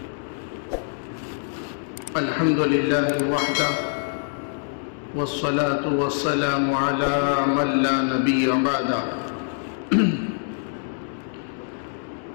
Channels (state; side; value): silent; right; digital silence